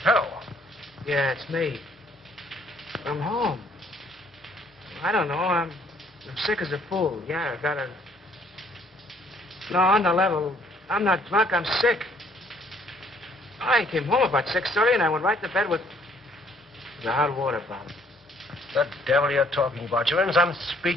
Hello. Yeah, it's me. I'm home. I don't know. I'm sick as a fool. Yeah, I got a... No, on the level. I'm not drunk. I'm sick. I came home about 6:30 and I went right to bed with the hot water bottle. The devil you're talking about. You're in some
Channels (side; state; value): both; normal; correlation 0.63